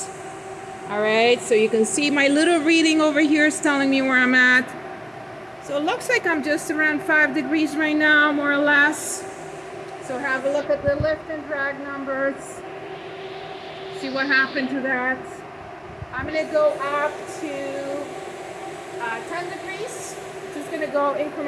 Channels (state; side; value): identical; both; correlation 1.00